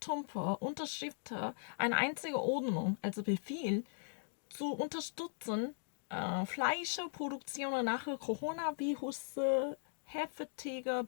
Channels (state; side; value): silent; right; digital silence